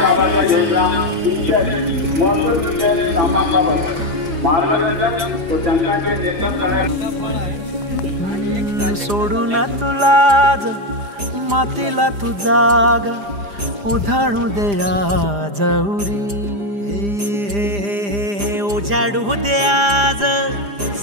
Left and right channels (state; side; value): late; left; 4.9 ms